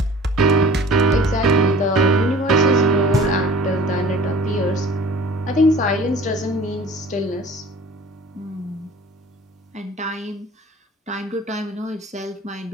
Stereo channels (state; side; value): normal; both; correlation 0.46